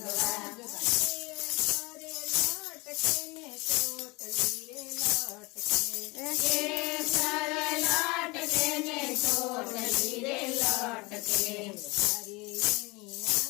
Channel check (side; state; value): right; quieter; 25.4 dB